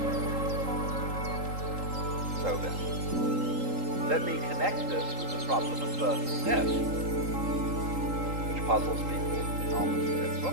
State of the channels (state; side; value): late; left; 3.8 ms